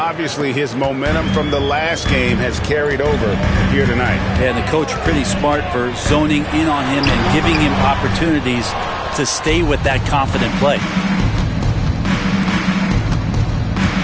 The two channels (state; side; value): identical; both; correlation 1.00